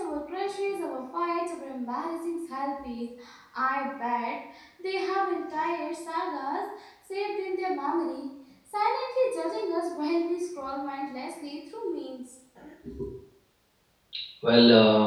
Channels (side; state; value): both; identical; correlation 1.00